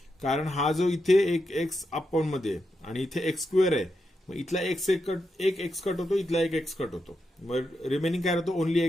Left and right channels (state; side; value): normal; both; correlation 0.85